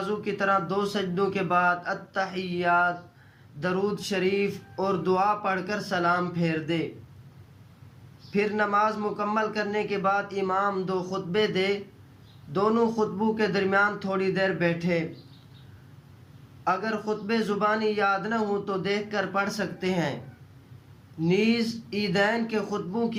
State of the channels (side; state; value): both; identical; correlation 1.00